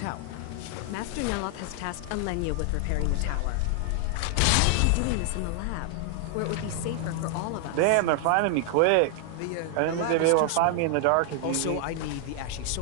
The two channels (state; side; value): different; both; correlation 0.00